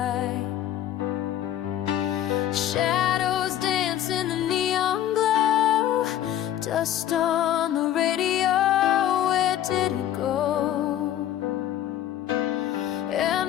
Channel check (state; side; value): quieter; right; 11.7 dB